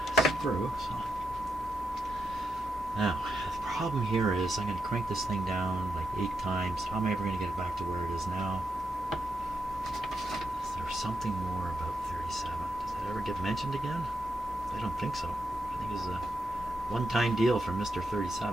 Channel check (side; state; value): both; normal; correlation 0.84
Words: screw. So now, the problem here is I'm going to crank this thing down like 8 times. How am I ever going to get it back to where it is now? Is there something more about 37? Does that ever get mentioned again? I don't think so. I think it's a one-time deal for Mr.